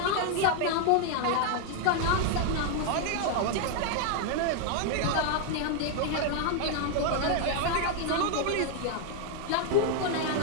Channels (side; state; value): both; different; correlation 0.00